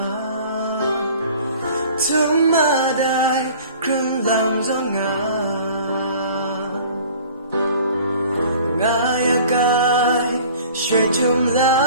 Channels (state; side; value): inverted; both; correlation -0.47